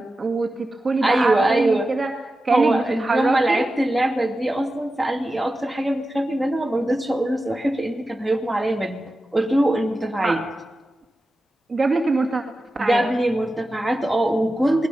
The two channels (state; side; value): normal; both; correlation 0.93